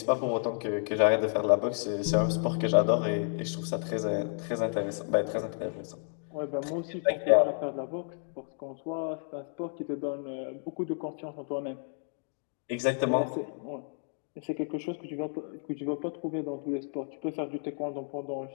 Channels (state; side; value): silent; right; 57 dB below the other